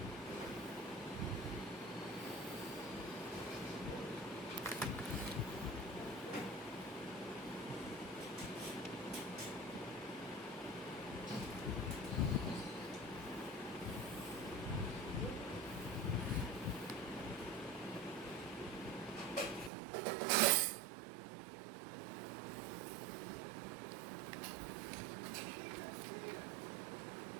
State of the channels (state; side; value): drops out; left; at 19.7 s